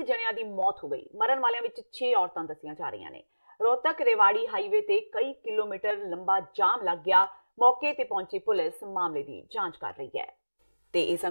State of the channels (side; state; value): both; inverted; correlation -1.00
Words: ਜਣਿਆਂ ਦੀ ਮੌਤ ਹੋ ਗਈ। ਮਰਨ ਵਾਲਿਆਂ ਵਿੱਚ 6 ਔਰਤਾਂ ਦੱਸੀਆਂ ਜਾ ਰਹੀਆਂ ਨੇ। ਰੋਹਤਕ ਰੇਵਾੜੀ ਹਾਈਵੇ ਤੇ ਕਈ ਕਿਲੋਮੀਟਰ ਲੰਬਾ ਜਾਮ ਲੱਗ ਗਿਆ। ਮੌਕੇ ਤੇ ਪਹੁੰਚੀ ਪੁਲਿਸ ਮਾਮਲੇ ਦੀ ਜਾਂਚ ਕਰ ਰਹੀ ਹੈ। ਤੇ ਇਹ